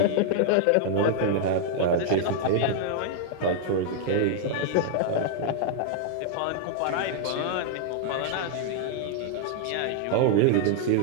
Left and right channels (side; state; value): both; different; correlation -0.01